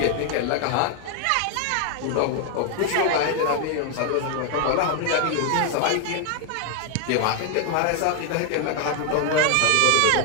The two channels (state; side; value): different; both; correlation 0.00